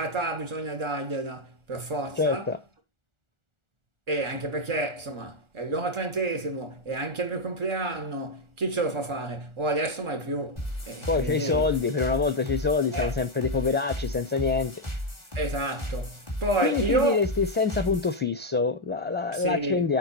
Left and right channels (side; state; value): left; late; 1.4 ms